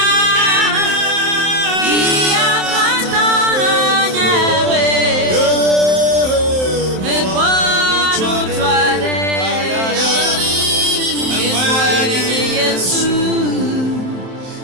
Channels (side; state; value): left; late; 27 ms